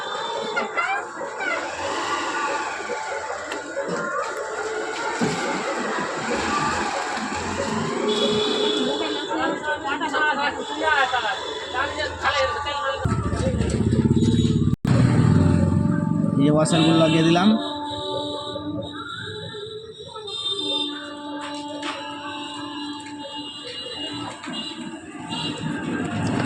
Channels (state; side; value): identical; both; correlation 1.00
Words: এই ওয়াশারগুলো লাগিয়ে দিলাম।